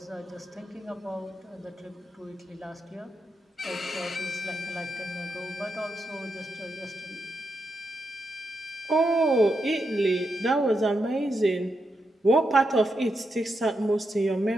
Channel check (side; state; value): both; normal; correlation 0.84